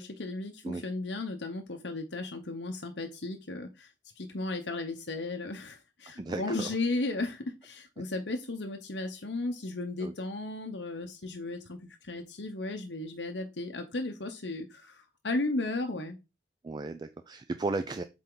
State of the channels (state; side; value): normal; both; correlation 0.49